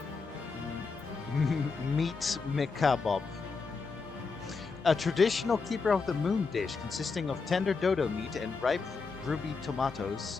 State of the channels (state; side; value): quieter; right; 4.6 dB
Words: Meat mekabob. A traditional keeper of the moon dish consisting of tender dodo meat and ripe ruby tomatoes